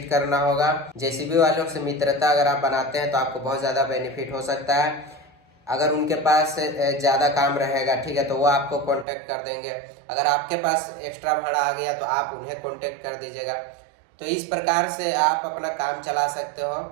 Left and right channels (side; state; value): left; drops out; at 9.1 s